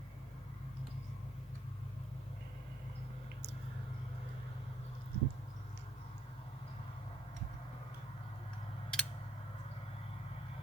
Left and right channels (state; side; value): normal; both; correlation 0.67